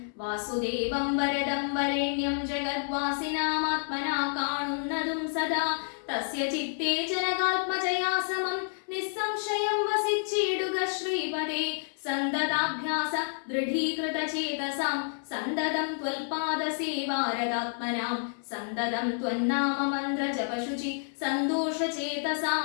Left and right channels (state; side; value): silent; right; 58 dB below the other